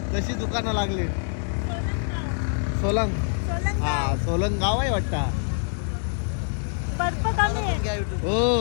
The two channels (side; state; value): right; silent; digital silence